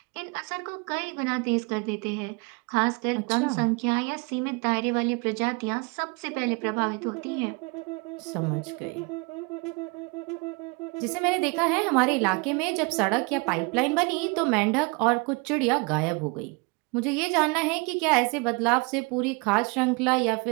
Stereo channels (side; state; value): left; quieter; 29.7 dB